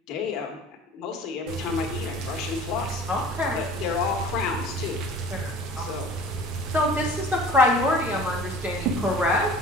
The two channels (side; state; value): both; normal; correlation 0.44